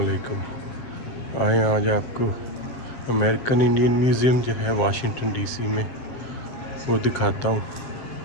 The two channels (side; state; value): right; late; 7.6 ms